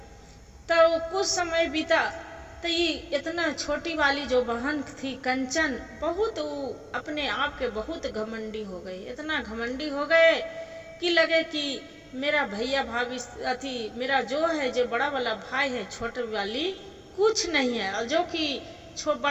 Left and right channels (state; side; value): identical; both; correlation 1.00